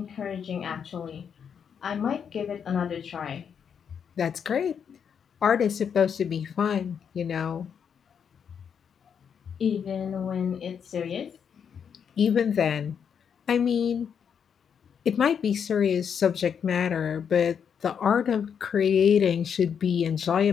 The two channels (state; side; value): quieter; right; 7.4 dB